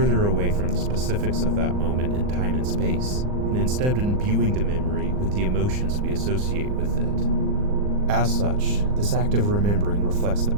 away from the specifics of that moment in time and space, and instead imbuing the memory with the emotions we associate with it. As such, this act of remembering reflects the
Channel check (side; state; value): left; late; 39 ms